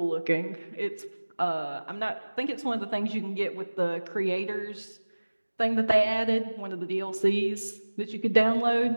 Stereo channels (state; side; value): inverted; both; correlation -1.00